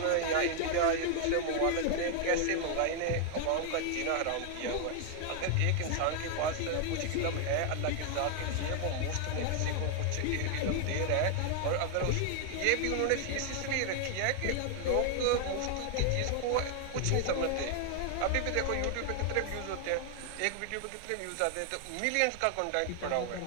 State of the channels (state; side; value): different; both; correlation 0.00